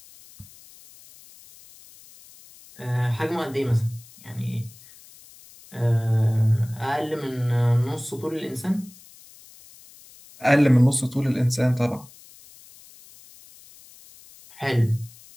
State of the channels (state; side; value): noise; left; hiss, 23 dB below the sound